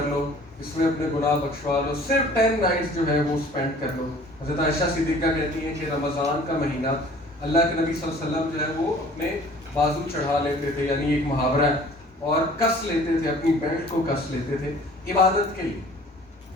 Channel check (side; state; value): both; normal; correlation 0.50